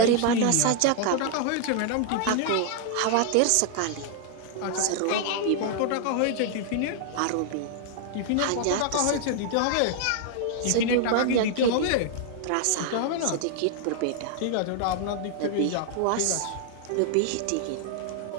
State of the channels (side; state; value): both; different; correlation 0.00